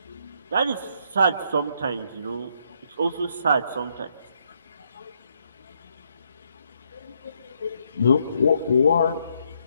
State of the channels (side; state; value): both; inverted; correlation -0.74